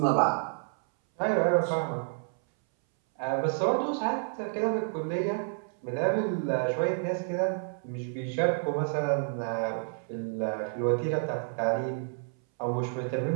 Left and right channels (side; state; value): left; silent; 58 dB below the other